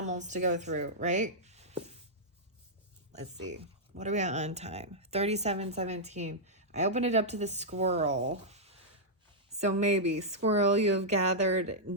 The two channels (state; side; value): normal; both; correlation -0.08